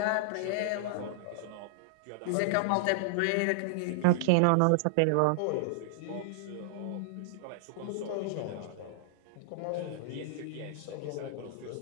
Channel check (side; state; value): both; different; correlation -0.01